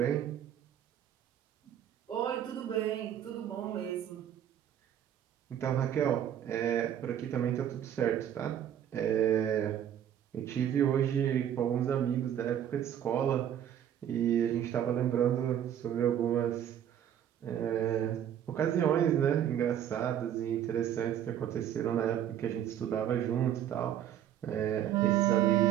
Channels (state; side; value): quieter; left; 10.2 dB